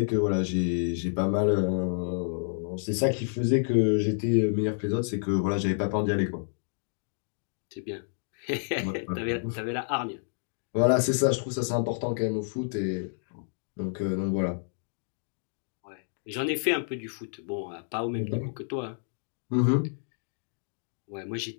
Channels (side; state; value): right; silent; digital silence